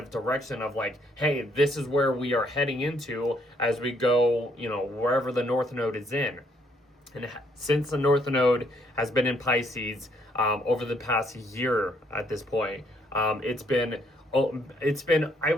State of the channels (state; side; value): normal; both; correlation 0.69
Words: direction of like, hey, this is where we are heading into as we go, wherever the North Node is in. And since the North Node has been in Pisces over the past year at this point, it's been, I